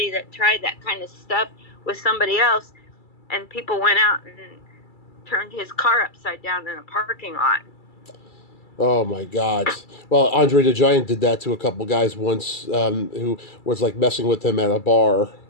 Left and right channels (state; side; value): late; right; 2.3 ms